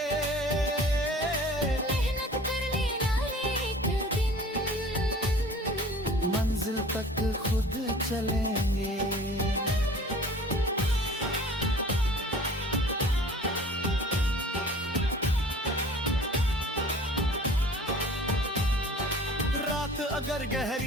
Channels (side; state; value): both; normal; correlation 0.46